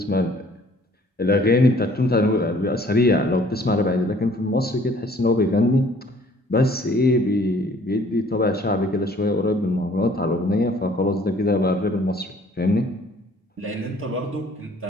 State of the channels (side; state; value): both; normal; correlation 0.57